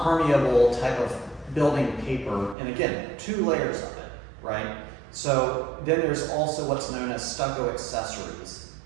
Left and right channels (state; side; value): drops out; left; at 2.6 s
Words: type of building paper, and again, 2 layers of it, right? So then there's also what's known as stucco accessories.